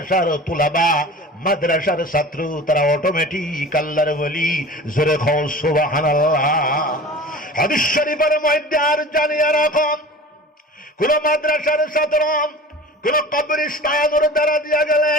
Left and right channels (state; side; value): normal; both; correlation 0.39